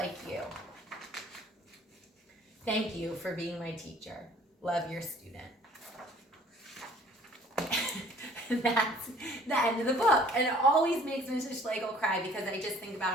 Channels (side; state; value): both; normal; correlation 0.54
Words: you. Thank you for being my teacher. Love, your student. That's the end of the book. And it always makes Mrs. Schlegel cry because I just think